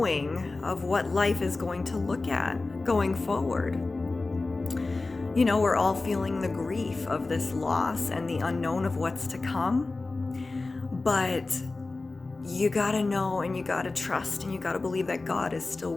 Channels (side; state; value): right; quieter; 3.4 dB